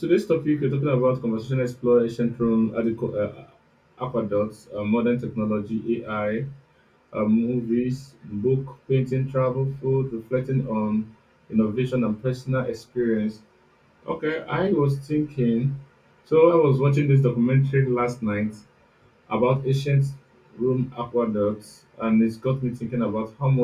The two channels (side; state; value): both; identical; correlation 1.00